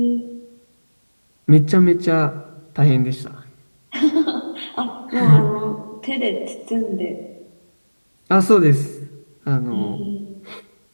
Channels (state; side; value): inverted; both; correlation -1.00